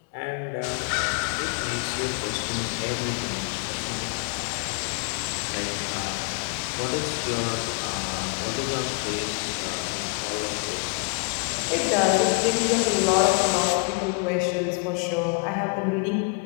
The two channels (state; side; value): quieter; right; 35.4 dB